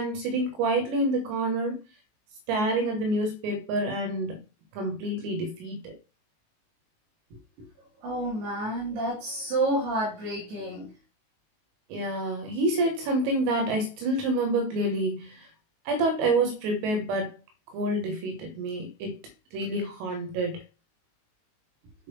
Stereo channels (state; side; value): late; left; 19 ms